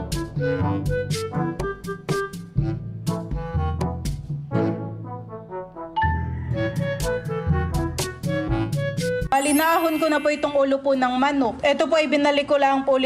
Balinahon ko na po itong ulo po ng manok. Ito po ay binalik ko lang po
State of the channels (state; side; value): identical; both; correlation 1.00